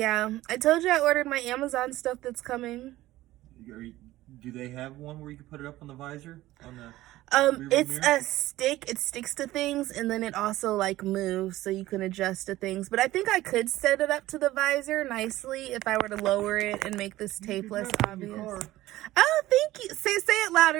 I told you I ordered my Amazon stuff that's coming. Do they have one where you can put it up on the visor? It's a stick. It sticks to things, and then it also like moves, so you can adjust to things. But I think I could set it up to the visor nicely if I were to lower it and make this tape less obvious. Oh, thank you. Say it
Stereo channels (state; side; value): quieter; left; 16.3 dB